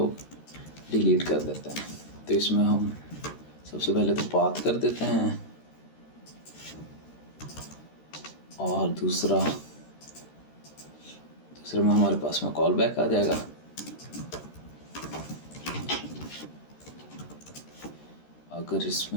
डिलीट कर देते हैं। तो इसमें हम सबसे पहले तो पाथ कर देते हैं, और दूसरे में हमारे पास में कॉल बैक आ जाएगा। अगर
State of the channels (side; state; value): right; late; 13 ms